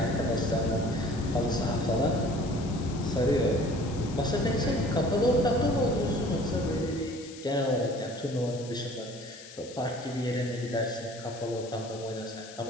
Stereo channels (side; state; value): left; noise; hiss, 17 dB below the sound